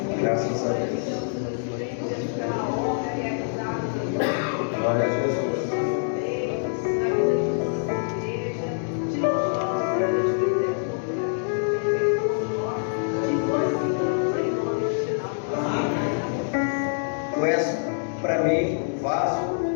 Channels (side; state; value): right; silent; digital silence